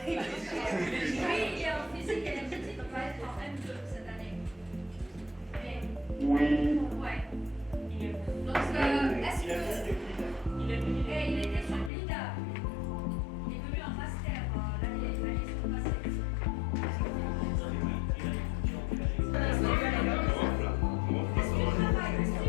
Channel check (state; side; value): drops out; right; at 11.9 s